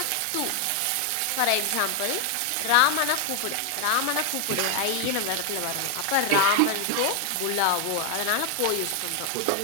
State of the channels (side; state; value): both; different; correlation 0.00